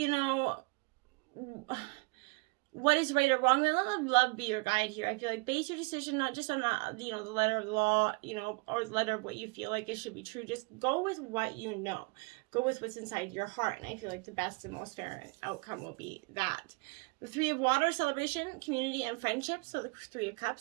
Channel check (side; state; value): left; quieter; 29.0 dB